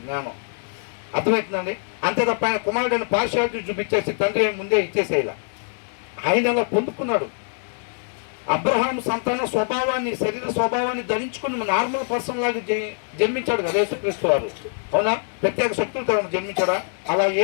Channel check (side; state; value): right; silent; 59 dB below the other